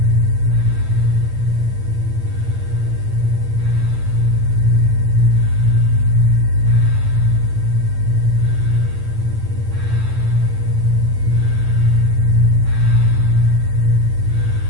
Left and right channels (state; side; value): late; left; 8.9 ms